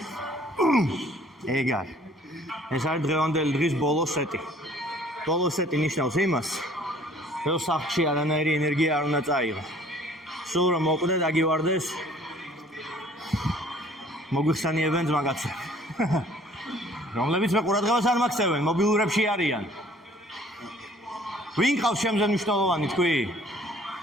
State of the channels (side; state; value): both; normal; correlation 0.55